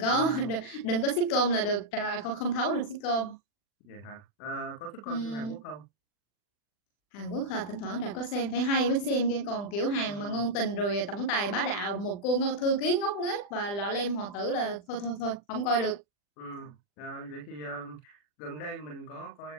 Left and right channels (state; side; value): late; right; 40 ms